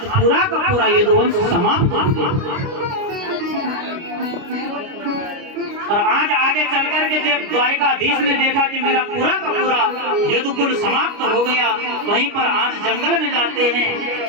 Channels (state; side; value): late; left; 29 ms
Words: पूरा का पूरा यदुवंश समाप्त हो गया। और आज आगे चल कर के जब द्वारिकाधीश ने देखा कि मेरा पूरा का पूरा यदुकुल समाप्त हो गया, वहीं पर आज जंगल में जाते हैं,